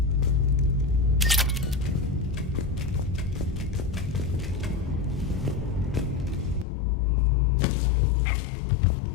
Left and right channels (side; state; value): right; drops out; at 6.7 s